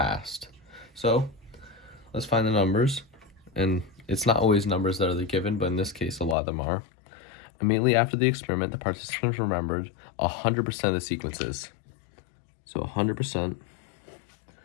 So let's find the numbers, and it's not always numbers that are the given, but in this case a lot of them are. Immediately after the experiment, the participants remembered 100% of the sequences. So 100%.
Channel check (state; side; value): drops out; right; at 6.4 s